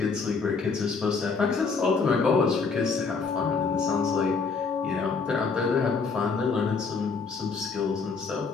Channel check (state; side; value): quieter; right; 4.9 dB